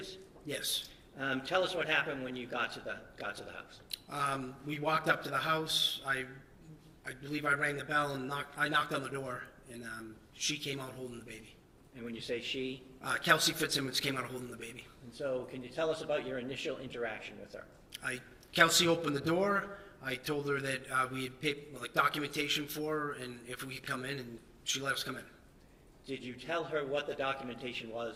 Yes. Tell us what happened when you got to the house. We walked up to the house. I believe I rang the bell and I knocked on the door, and she came out holding the baby. And when you say she? Kelsey Fitzsimmons came out holding the baby. And so can you tell us about your initial interaction with her? Kelsey opened the door. I told her that we had paid documentation for her, and if we could come in, and she let us come in. Did you tell her what the documentation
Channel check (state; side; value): identical; both; correlation 1.00